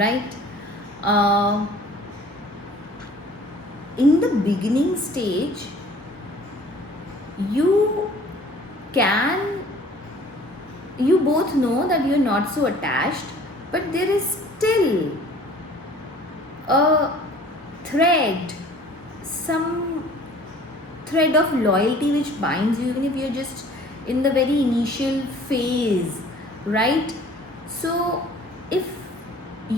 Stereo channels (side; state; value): both; normal; correlation 0.50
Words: uh, in the beginning stage you can you both know that you're not so attached, but there is still a thread, some thread of loyalty which binds you, even if you're just in the very initial phase, right? So, if